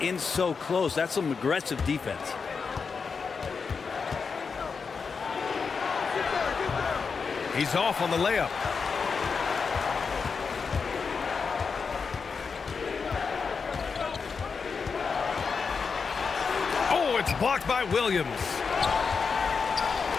in so close. That's some aggressive defense. He's off on the layup. Oh, it's blocked by Williams.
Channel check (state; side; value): quieter; right; 5.4 dB